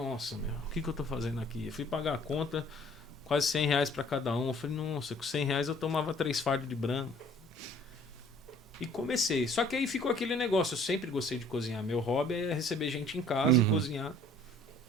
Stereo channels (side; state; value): both; normal; correlation 0.55